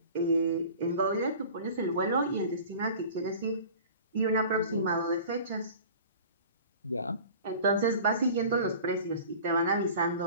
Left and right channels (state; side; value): inverted; both; correlation -0.42